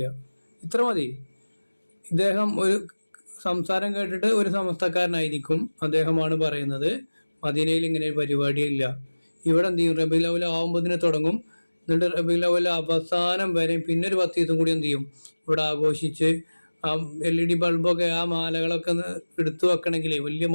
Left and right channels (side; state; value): both; inverted; correlation -1.00